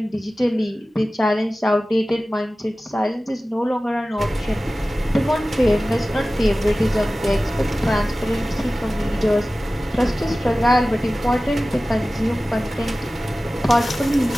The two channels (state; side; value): normal; both; correlation 0.96